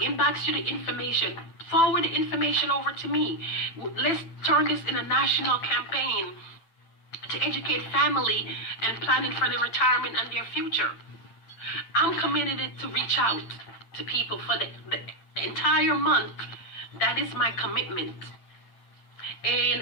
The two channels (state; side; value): late; right; 9.0 ms